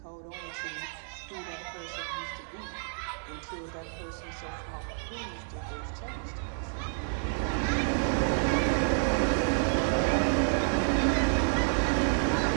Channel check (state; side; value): silent; left; 58 dB below the other